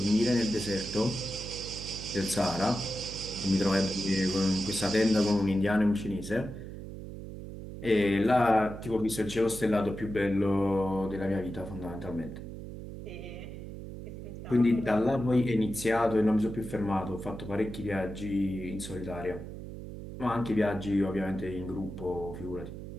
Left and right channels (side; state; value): right; noise; hum, 10 dB below the sound